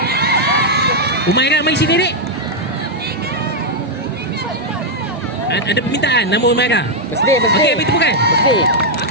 Umairah mari sini dek. Ada permintaan nama Umairah. Birthday. Okey, beri tepukan.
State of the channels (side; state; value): both; normal; correlation -0.02